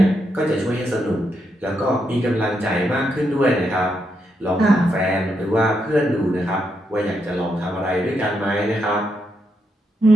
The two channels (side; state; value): both; normal; correlation 0.81